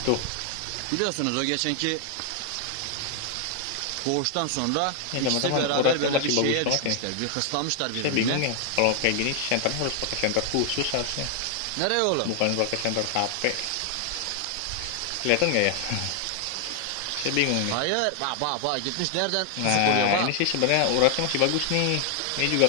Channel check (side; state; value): both; different; correlation 0.00